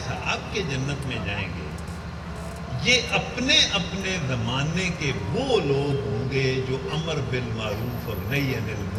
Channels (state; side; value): identical; both; correlation 1.00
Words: کے جنت میں جائیں گے یہ اپنے اپنے زمانے کے وہ لوگ ہوں گے جو امر بالمعروف اور نہی عن